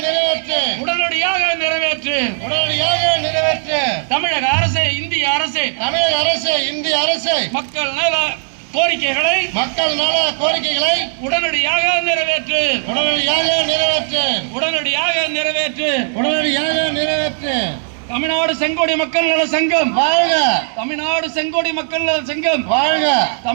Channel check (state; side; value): silent; left; 64 dB below the other